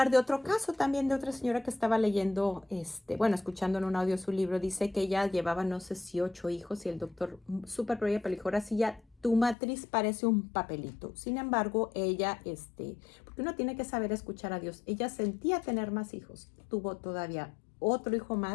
de otro caso también, de otra señora que estaba leyendo, bueno, escuchando en un audio su libro. Dice que ella llevaba, no sé si 8 hijos, y el doctor súper pro ella, pero dijo, ahora sí ya, tu matriz parece un papelito. Sin embargo, ella, porque uno tiene que saber escuchar a Dios, ella sentía tener más hijos, tuvo todavía otro hijo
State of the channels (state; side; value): drops out; right; at 9.6 s